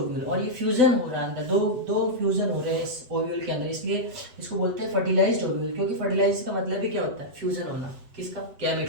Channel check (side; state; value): left; late; 8.0 ms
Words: और ये फ्यूजन हो रहा है अंदर, दो फ्यूजन हो रहे हैं इस ओव्यूल के अंदर, इसलिए इसको बोलते हैं फर्टिलाइज्ड ओव्यूल। क्योंकि फर्टिलाइज का मतलब ही क्या होता है? फ्यूजन होना। किसका?